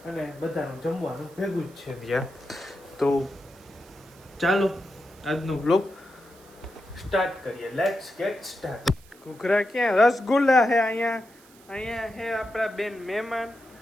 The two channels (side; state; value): right; noise; hiss, 26 dB below the sound